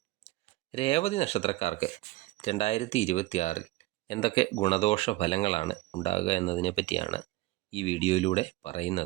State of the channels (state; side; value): quieter; left; 18.4 dB